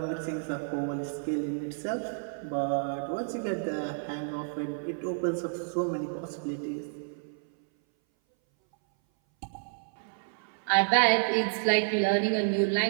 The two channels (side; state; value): left; silent; 58 dB below the other